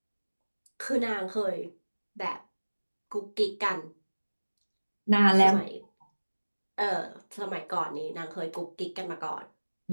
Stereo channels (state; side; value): inverted; both; correlation -1.00